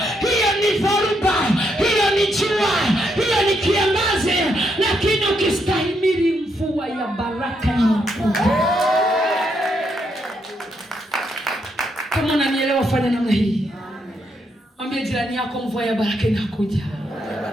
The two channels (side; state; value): both; normal; correlation 0.78